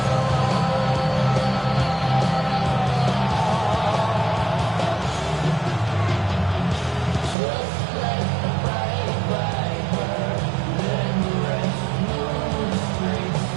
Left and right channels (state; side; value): drops out; left; at 7.4 s